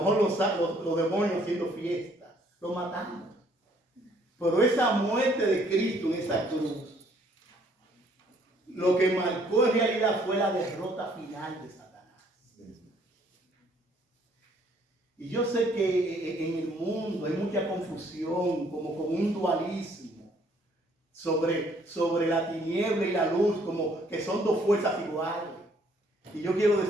los demonios haciendo fiesta, lo matamos. Pero esa muerte de Cristo en esa cruz, lo que marcó en realidad fue la derrota final de Satanás. Y yo sé que en el mundo hay mucha confusión, como con un dualismo sobre la tiniebla y la luz, como que son dos fuerzas iguales. Y yo quiero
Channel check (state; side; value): normal; both; correlation 0.63